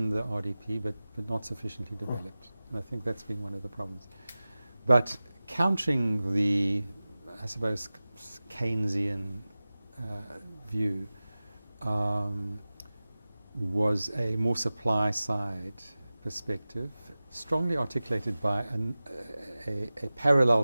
the RDP, but not sufficiently developed. And I think that's been one of the problems. But countering the, I suppose, Keynesian view was a more supply-side perspective, strongly articulated by a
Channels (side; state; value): both; inverted; correlation -0.97